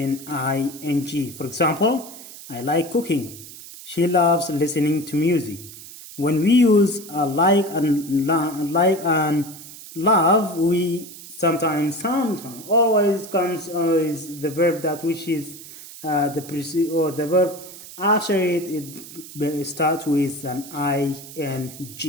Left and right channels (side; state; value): right; noise; hiss, 15 dB below the sound